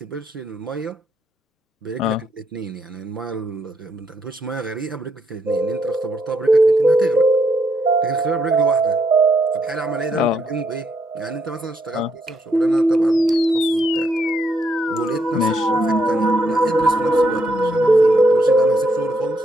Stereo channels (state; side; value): normal; both; correlation 0.76